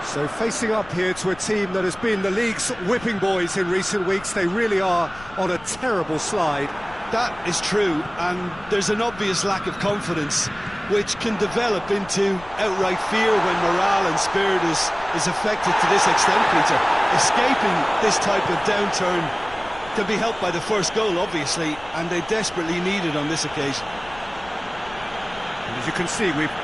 So facing up here to a team that has been the league's whipping boys in recent weeks, they really are on a terrible slide. That is true, and there's an obvious lack of confidence, which can develop into outright fear when morale and spirit is affected to this extent, Peter. Escaping this type of downturn can be helped by the first goal, obviously, and they desperately need it on this occasion. And as you can see, we've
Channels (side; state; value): left; noise; rumble, 20 dB below the sound